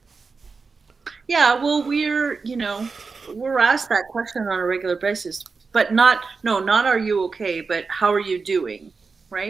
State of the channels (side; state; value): left; quieter; 4.6 dB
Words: yeah. Well, we're asked that question on a regular basis, but not are you okay, but how are you doing,